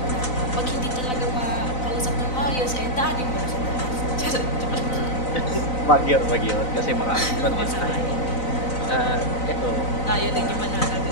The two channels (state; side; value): late; right; 4.0 ms